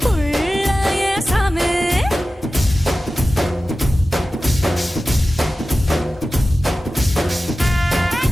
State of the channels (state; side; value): normal; both; correlation 0.95